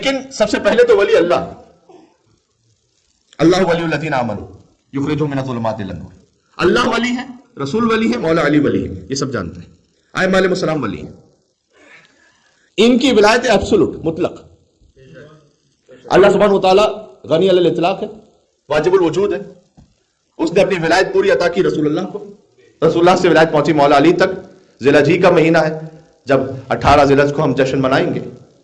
سب سے پہلے تو ولی اللہ ولی الذین آمنوا یخرجہم من الظلمات الی النور. اللہ ولی ہے، رسول ولی ہے، مولا علی ولی ہے، یہ سب جانتے ہیں. ائمہ علیہ السلام ولی ہیں. ان کی ولایت ایبسولوٹ مطلق. اللہ سبحانہ وتعالی غنی علی الاطلاق ہے، واجب الوجود ہے. اس نے اپنی ولایت پوری عطا کی رسول اللہ کو. رسول اللہ سے ولایت پہنچی مولا علی تک. ذی الحجہ کا مہینہ ہے، جب 18 ذی الحجہ کو ہم جشن منائیں گے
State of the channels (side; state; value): both; identical; correlation 1.00